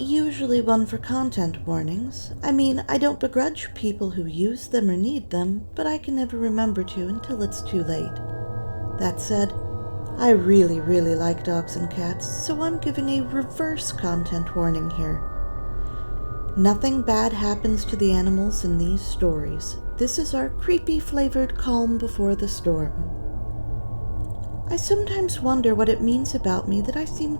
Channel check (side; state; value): both; inverted; correlation -1.00